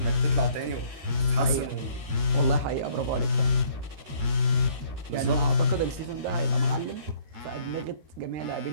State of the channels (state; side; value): late; left; 13 ms